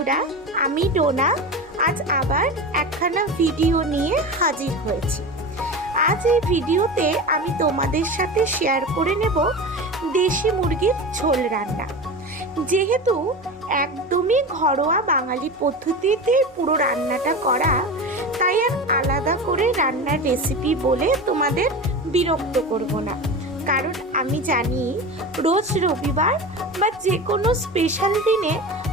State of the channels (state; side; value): normal; both; correlation 0.27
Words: আমি ডোনা। আজ আবার একখানা ভিডিও নিয়ে হাজির হয়েছি। আজ এই ভিডিওতে আমি তোমাদের সাথে শেয়ার করে নেব দেশি মুরগির ঝোল রান্না। যেহেতু একদমই ঘরোয়া বাঙালি পদ্ধতিতে পুরো রান্নাটা করা, তাই আর আলাদা করে রান্নার রেসিপি বলে তোমাদের বিরক্ত করব না। কারণ আমি জানি রোজ রবিবার বা যে কোনো স্পেশাল দিনে